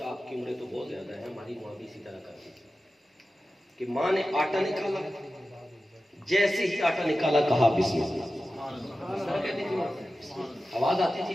آپ کی عمریں تو بہت زیادہ ہے، ہماری ماں بھی اسی طرح کرتی تھی کہ ماں نے آٹا نکالا، جیسے ہی آٹا نکالا کہا بسم اللہ. کہتی تھی آواز آتی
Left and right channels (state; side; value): normal; both; correlation 0.94